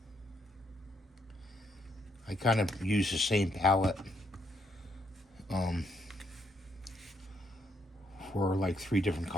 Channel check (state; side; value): normal; both; correlation 0.74